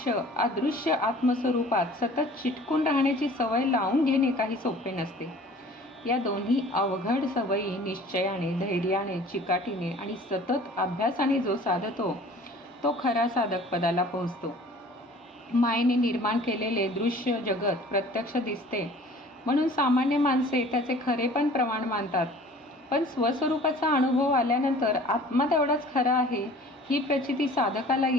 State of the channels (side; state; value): both; normal; correlation 0.48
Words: अदृश्य आत्मस्वरूपात सतत चिटकून राहण्याची सवय लावून घेणे काही सोपे नसते. या दोन्ही अवघड सवयी निश्चयाने, धैर्याने, चिकाटीने आणि सतत अभ्यासाने जो साधतो तो खरा साधक पदाला पोहोचतो. मायेने निर्माण केलेले दृश्य जगत प्रत्यक्ष दिसते म्हणून सामान्य माणसे त्याचे खरेपण प्रमाण मानतात. पण स्वस्वरूपाचा अनुभव आल्यानंतर आत्मा तेवढाच खरा आहे ही प्रचिती साधकाला